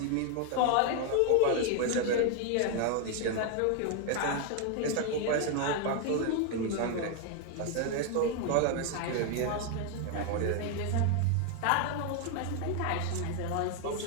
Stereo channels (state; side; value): different; both; correlation 0.01